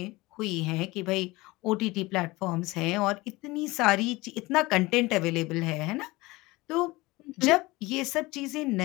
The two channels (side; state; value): right; quieter; 21.4 dB